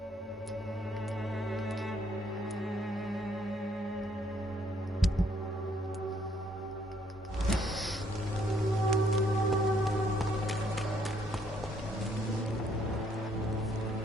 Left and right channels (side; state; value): both; normal; correlation 0.68